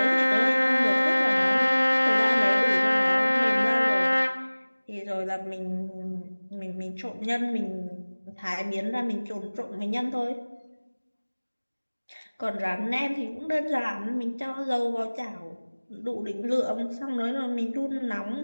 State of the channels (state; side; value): inverted; both; correlation -1.00